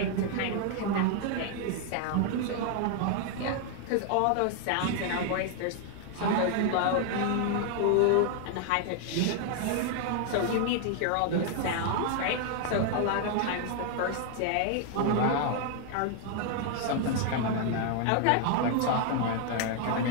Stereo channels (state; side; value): different; both; correlation 0.00